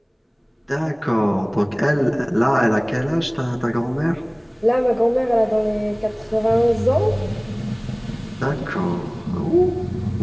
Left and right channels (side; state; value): both; identical; correlation 1.00